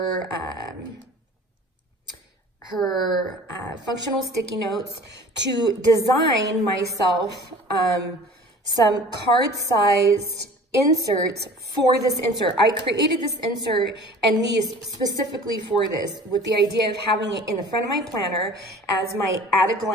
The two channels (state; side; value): normal; both; correlation 0.44